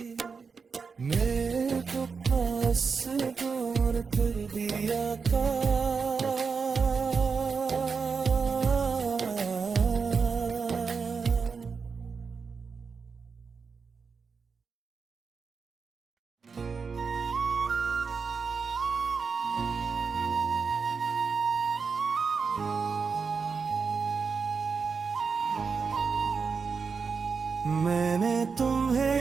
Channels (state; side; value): quieter; left; 5.3 dB